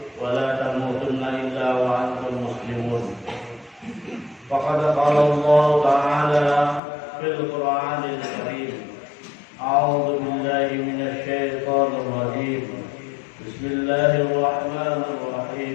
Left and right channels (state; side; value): drops out; right; at 6.8 s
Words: ولا تموتن إلا وأنتم مسلمون. فقد قال الله تعالى في القرآن الكريم: أعوذ بالله من الشيطان الرجيم، بسم الله الرحمن